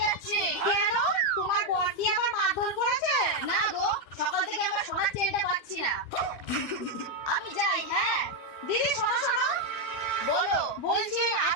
যাচ্ছি। কেন? তোমার বোন কি আবার মারধর করেছে? না গো, সকাল থেকে আমার সোনার চেনটা পাচ্ছি না। আমি যাই। হ্যাঁ দিদি, শোনো শোনো। বলো। বলছি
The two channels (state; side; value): late; right; 12 ms